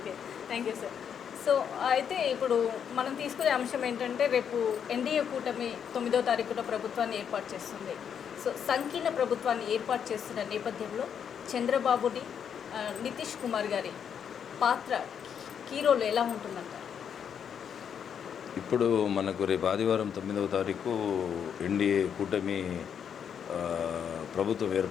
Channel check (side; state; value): right; quieter; 7.9 dB